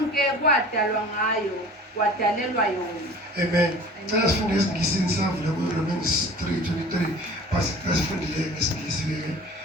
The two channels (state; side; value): normal; both; correlation 0.43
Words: kwadalwa ngayo, kwadalelwa yona. Amen. Xa sifunde esiNgisini savula kuRomans 3:23, base xa sifundile ngesiNgisi ke